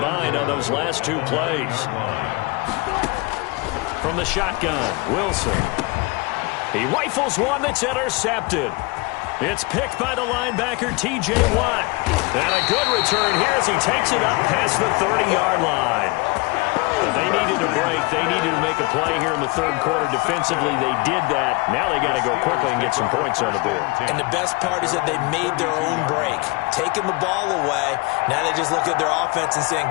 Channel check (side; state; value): right; quieter; 25.6 dB